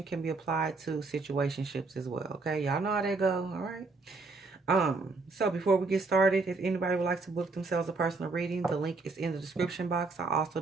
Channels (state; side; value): quieter; left; 3.8 dB